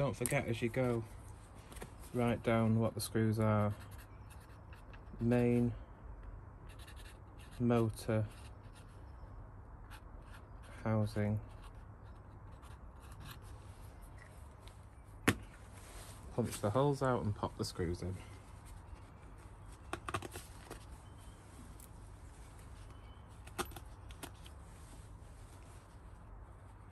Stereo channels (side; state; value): both; identical; correlation 1.00